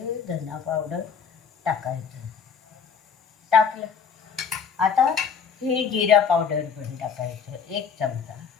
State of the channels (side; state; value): right; quieter; 6.5 dB